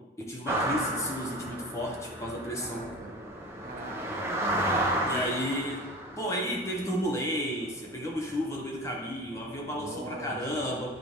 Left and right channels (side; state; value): both; normal; correlation 0.34